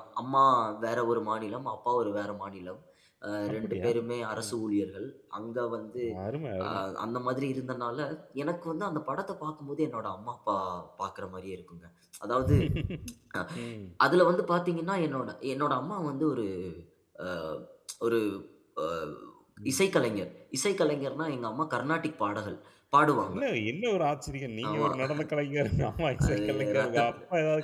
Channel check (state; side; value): identical; both; correlation 1.00